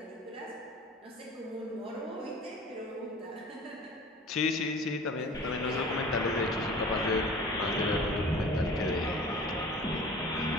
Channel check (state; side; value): normal; both; correlation 0.42